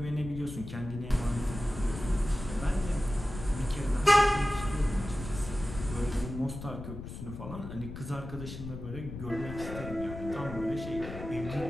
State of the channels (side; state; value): left; noise; rumble, 9 dB below the sound